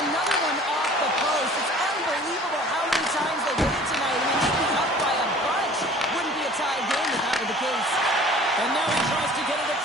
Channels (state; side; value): normal; both; correlation 0.48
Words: another one off the post. It's unbelievable how many times they did it tonight. I mean, they'd be up by a bunch. Wouldn't be a tie game if that were the case. And now he tries to get it